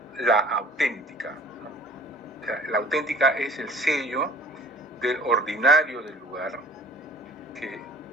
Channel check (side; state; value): both; normal; correlation 0.48